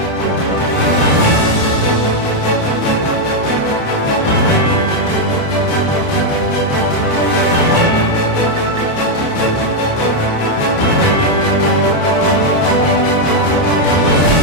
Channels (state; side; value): late; right; 29 ms